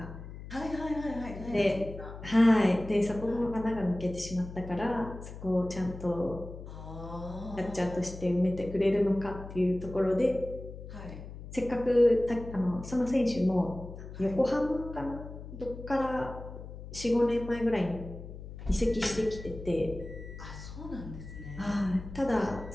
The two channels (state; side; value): noise; left; hum, 12 dB below the sound